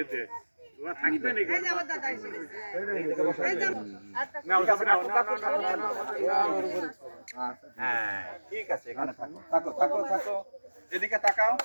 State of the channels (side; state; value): both; inverted; correlation -1.00